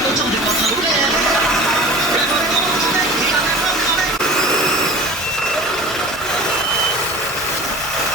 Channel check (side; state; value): both; normal; correlation 0.39